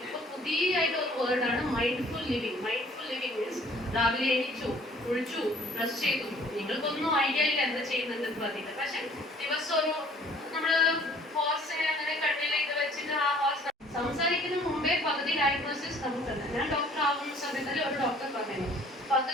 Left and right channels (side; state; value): both; normal; correlation 0.56